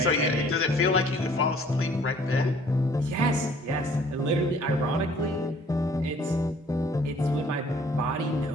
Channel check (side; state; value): both; normal; correlation 0.57